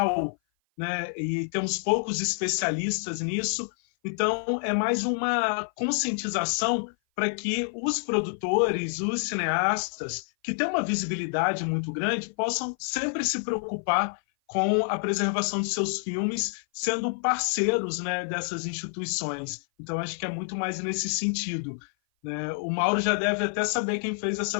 né? E temos poucos especialistas nisso. Então, é mais uma conscientização para que os produtores, os cineastas, que têm uma visibilidade muito grande, possam sempre se preocupar com a preservação de seus filmes, sendo parceiros, né, dessas instituições. Então, acho que é muito mais nesse sentido, né? O Mauro já deve até saber quem fez essa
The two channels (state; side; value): silent; right; 56 dB below the other